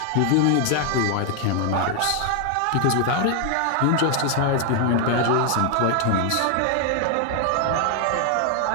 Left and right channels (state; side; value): different; both; correlation 0.00